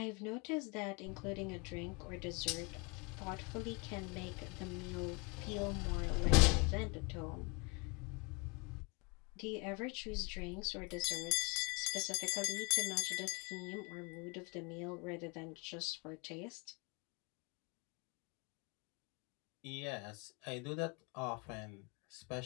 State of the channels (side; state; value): right; quieter; 28.1 dB